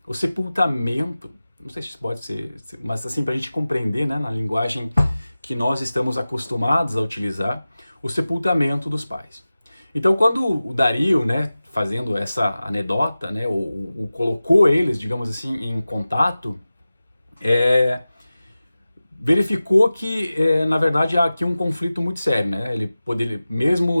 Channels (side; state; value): both; inverted; correlation -0.96